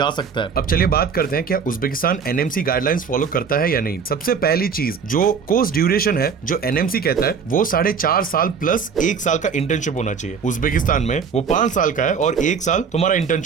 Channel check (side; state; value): left; quieter; 6.2 dB